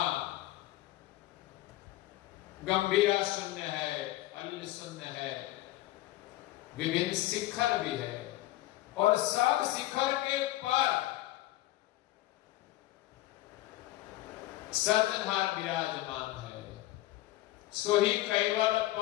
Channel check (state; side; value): quieter; right; 16.7 dB